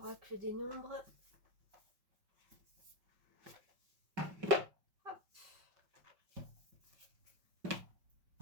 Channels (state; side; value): late; left; 5.5 ms